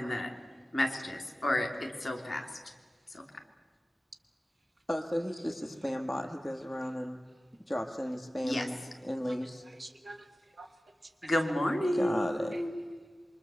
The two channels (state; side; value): normal; both; correlation 0.96